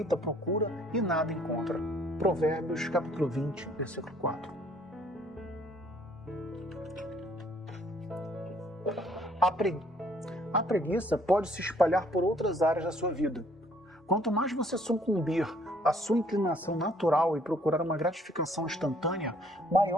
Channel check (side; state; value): both; normal; correlation 0.61